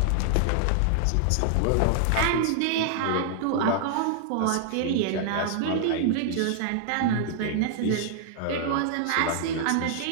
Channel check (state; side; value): different; both; correlation -0.01